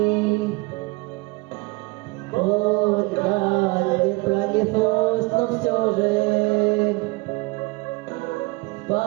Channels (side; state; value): left; quieter; 25.3 dB